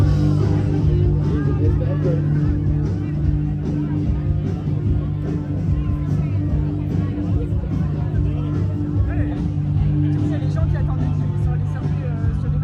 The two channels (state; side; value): identical; both; correlation 1.00